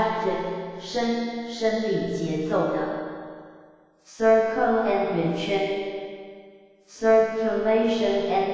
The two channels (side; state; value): both; identical; correlation 1.00